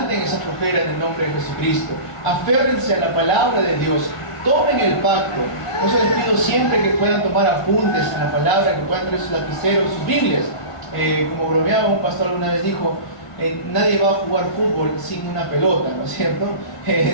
esa flojera en el nombre de Jesucristo. Aférrense a la palabra de Dios. Tomen el pacto. Por eso les pido siempre que puedan tomar apuntes en la palabra, que puedan traer sus lapiceros, sus Biblias. Como bromeaba un pastor alguna vez, dijo: nadie va a jugar fútbol sin una pelota, ¿no es cierto?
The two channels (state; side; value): late; right; 1.5 ms